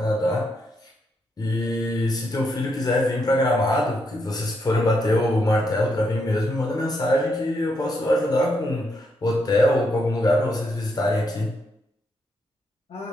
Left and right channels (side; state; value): both; normal; correlation 0.79